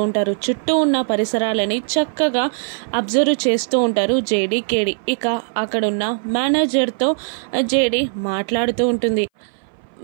ఉంటారు. చుట్టూ ఉన్న పరిసరాలని చక్కగా అబ్జర్వ్ చేస్తూ ఉంటారు జేడి కేడి. ఇక అక్కడున్న మేనేజర్తో జేడి మాట్లాడుతూ ఉంటుంది.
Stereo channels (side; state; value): left; silent; 60 dB below the other